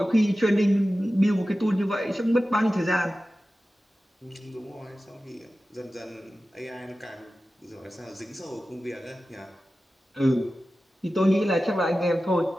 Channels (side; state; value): both; normal; correlation 0.94